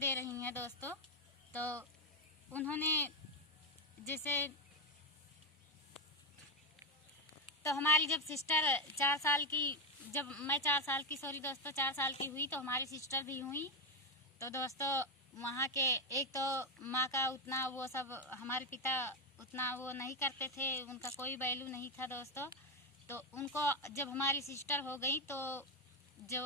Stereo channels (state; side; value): normal; both; correlation 0.08